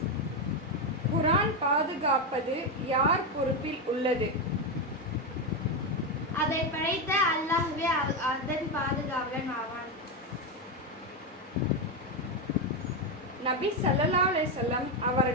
குர்ஆன் பாதுகாப்பது யார் பொறுப்பில் உள்ளது? அதை படைத்த அல்லாஹ்வே அதன் பாதுகாவலன் ஆவான். நபி ஸல்லல்லாஹு அலைஹி வஸல்லம்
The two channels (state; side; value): normal; both; correlation 0.09